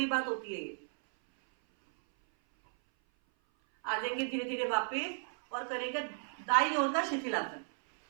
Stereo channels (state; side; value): silent; left; 55 dB below the other